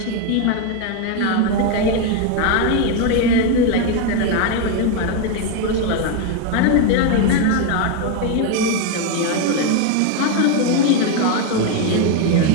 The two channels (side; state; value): both; different; correlation 0.02